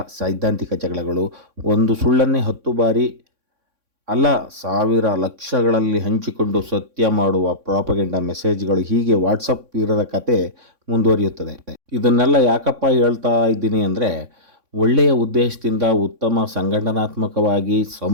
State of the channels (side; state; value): left; late; 3.6 ms